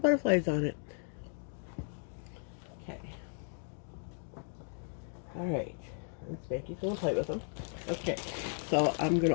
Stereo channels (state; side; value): silent; right; 54 dB below the other